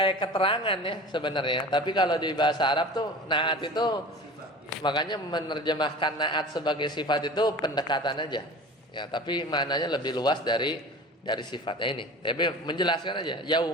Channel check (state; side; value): normal; both; correlation 0.38